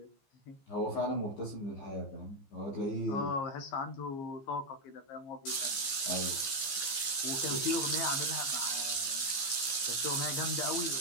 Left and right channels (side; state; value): right; late; 15 ms